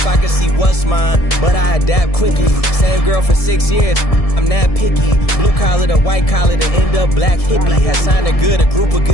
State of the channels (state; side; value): late; right; 1.7 ms